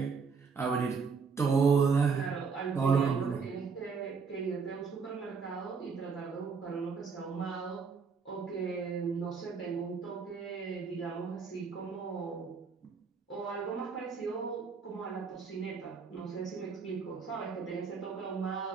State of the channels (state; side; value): quieter; left; 5.4 dB